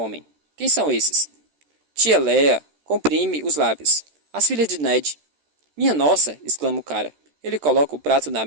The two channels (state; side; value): late; left; 13 ms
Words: Quem são esses? Tia Léa comprime os lábios. As filhas de Ned. Minha nossa! Exclama o cara. Ele coloca o prato na